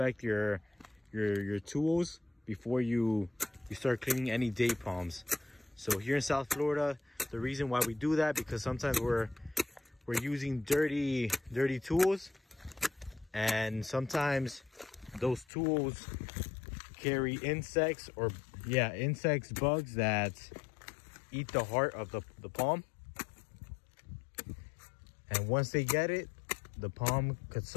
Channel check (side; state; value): right; drops out; at 15.5 s